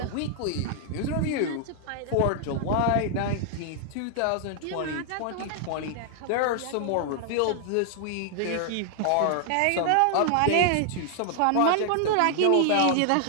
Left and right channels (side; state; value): both; different; correlation 0.00